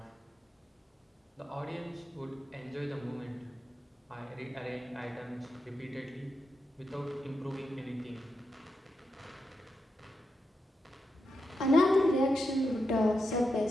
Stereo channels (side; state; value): both; normal; correlation 0.86